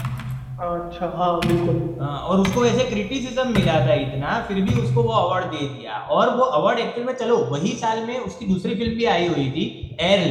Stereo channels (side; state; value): both; identical; correlation 1.00